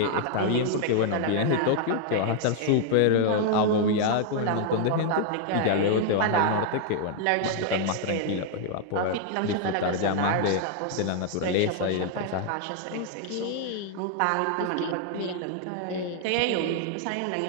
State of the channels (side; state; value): both; different; correlation 0.00